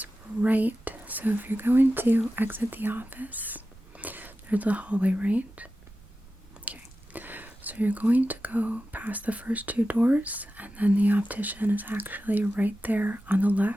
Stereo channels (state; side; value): noise; right; rumble, 24 dB below the sound